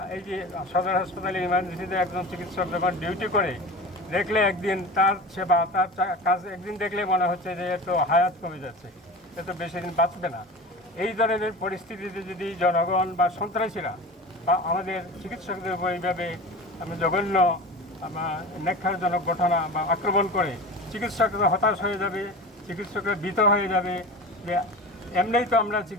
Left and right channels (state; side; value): normal; both; correlation 0.33